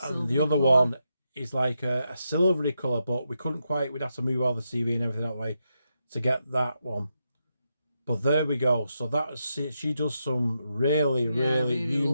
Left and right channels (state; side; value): inverted; both; correlation -0.84